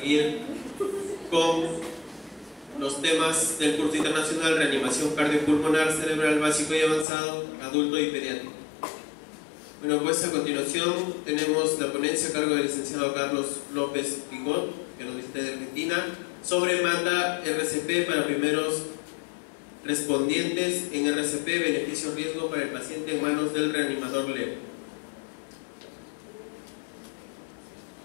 con los temas del curso internacional Reanimación Cardiopulmonar Cerebral Básico y Avanzado, Adulto y Pediátrico. Bueno, pues a continuación tenemos la ponencia a cargo del licenciado Carlos López Picot, que nos visita de Argentina, sobre manda RCP para primeros respondientes en RCP, beneficio-riesgo para el paciente en manos del reanimador leve.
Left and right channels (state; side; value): drops out; right; at 7.1 s